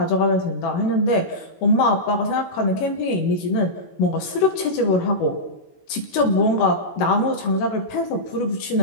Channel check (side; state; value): right; late; 16 ms